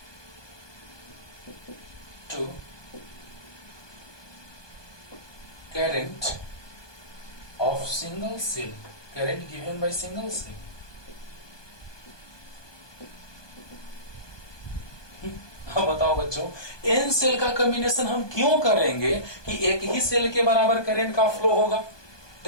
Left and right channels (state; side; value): late; right; 1.2 ms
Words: current of single cell, current given by single cell। अब बताओ बच्चों, एन सेल का कॉम्बिनेशन हम क्यों करेंगे कि एक ही सेल के बराबर करंट का फ्लो होगा।